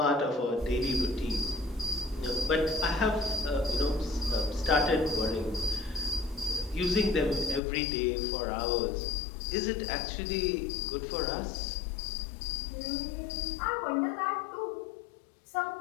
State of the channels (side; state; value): right; drops out; at 7.6 s